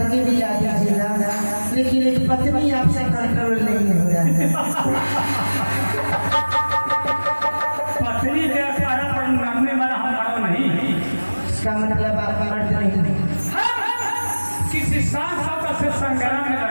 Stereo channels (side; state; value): both; inverted; correlation -1.00